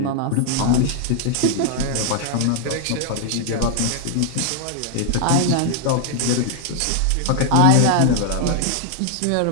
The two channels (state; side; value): different; both; correlation 0.00